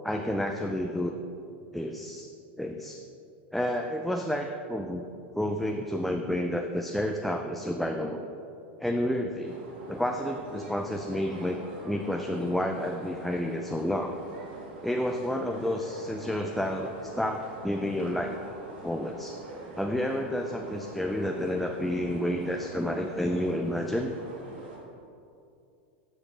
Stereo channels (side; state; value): both; normal; correlation 0.73